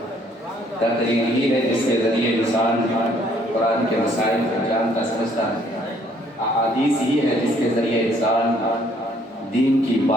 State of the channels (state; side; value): normal; both; correlation 0.63